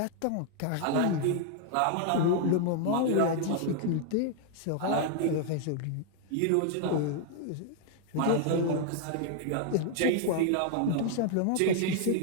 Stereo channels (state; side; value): different; both; correlation 0.00